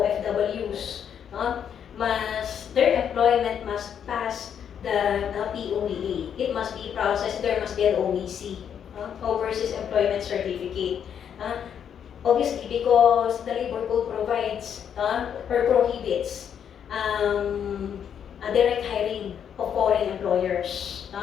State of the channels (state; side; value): quieter; right; 8.4 dB